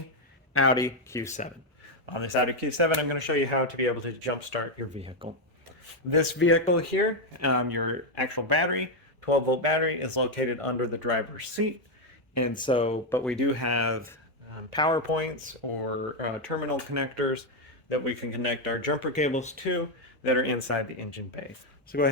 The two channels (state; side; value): normal; both; correlation 0.03